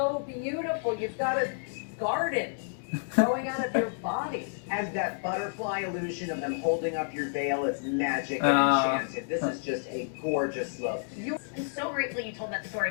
beautiful. You've got a garden growing out of your body. And that butterfly illusion of them holding up your veil is magic and enchanted. This is just a gorgeous look. I'm so grateful you told that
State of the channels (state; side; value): silent; right; digital silence